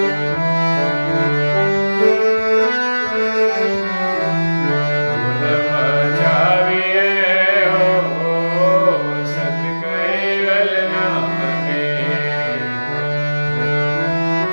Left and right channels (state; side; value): inverted; both; correlation -1.00